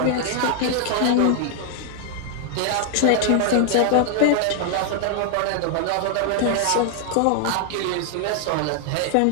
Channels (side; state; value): both; different; correlation 0.00